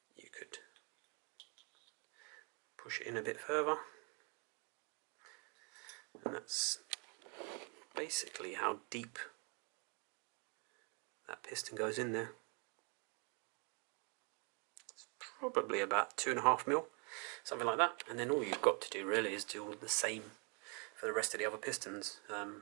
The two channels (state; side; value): quieter; left; 33.3 dB